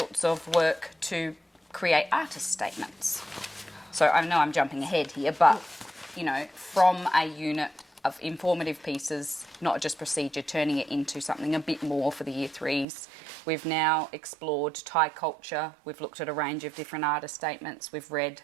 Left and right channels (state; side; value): drops out; left; at 12.9 s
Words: of work to create artist statements. So I know I'm jumping ahead here, but, from a unit of informative pieces, not just procedure, turning it into something a bit more for the Year 3s. We've now explored Thai culture. We've looked at a range of different artist statements. We've read,